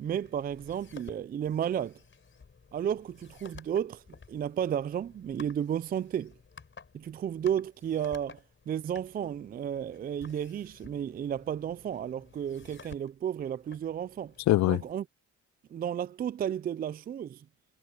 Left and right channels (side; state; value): left; quieter; 3.7 dB